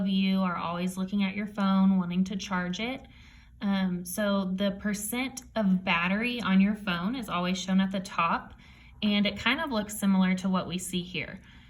you are always looking at your phone, wanting to charge it. So the percent of battery on your phone is always shown at the top, and it kind of looks similar to what we see here.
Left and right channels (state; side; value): identical; both; correlation 1.00